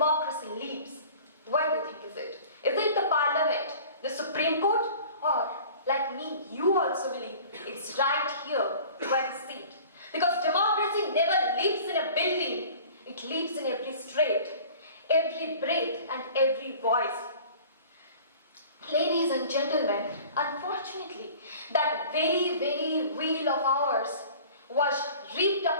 lives? Why do you think is it? Is it the parliament, the Supreme Court, or like me, you also believe it's right here where we sit? Because democracy never lives in a building, it lives in every street, every breath and every voice. Ladies and gentlemen, unfortunately, that very wheel of ours was ripped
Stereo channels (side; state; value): both; inverted; correlation -0.45